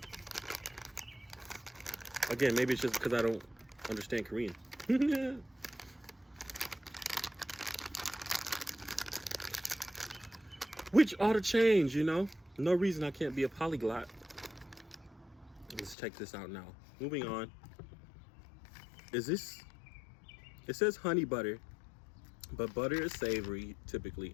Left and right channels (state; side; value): drops out; right; at 16.0 s